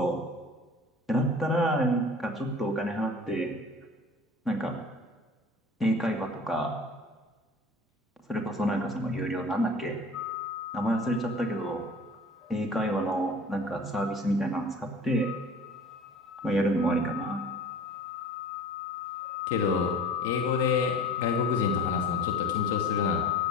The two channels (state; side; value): normal; both; correlation 0.42